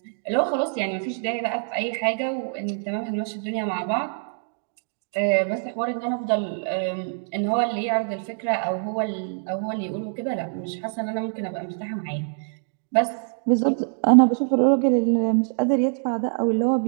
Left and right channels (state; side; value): silent; left; digital silence